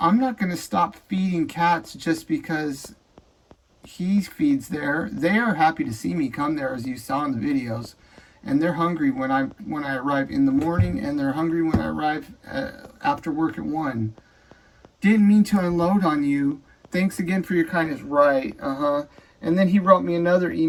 not going to stop feeding cats just because he feeds there. They are happy to see me come there, as you saw in the videos. And they're hungry when I arrive in the morning, and they're hungry when I arrive after work at 1. Didn't mean to unload on you. Thanks again for your kindness. Right, And then he wrote me another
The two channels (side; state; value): both; identical; correlation 1.00